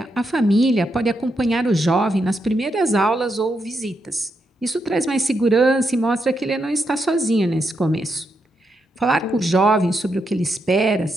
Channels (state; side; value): normal; both; correlation 0.82